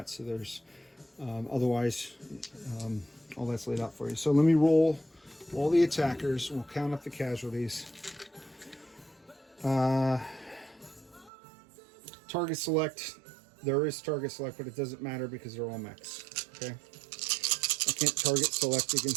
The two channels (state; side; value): drops out; left; at 11.3 s